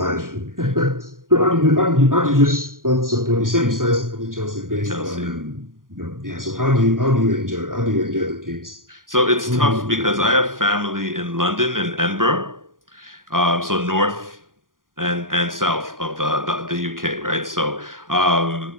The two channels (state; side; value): late; left; 0.90 ms